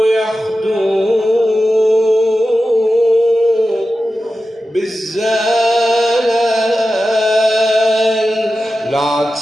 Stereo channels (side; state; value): both; normal; correlation 0.93